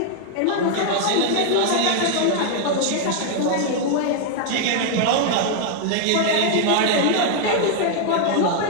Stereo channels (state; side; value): different; both; correlation 0.00